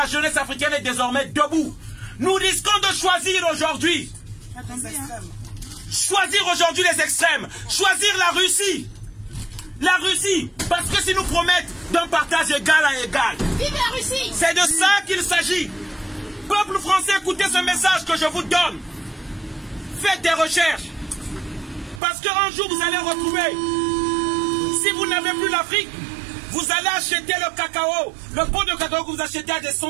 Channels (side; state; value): left; drops out; at 22.0 s